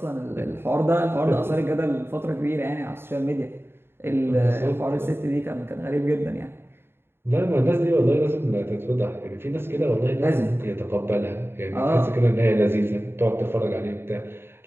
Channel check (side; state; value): left; late; 0.11 ms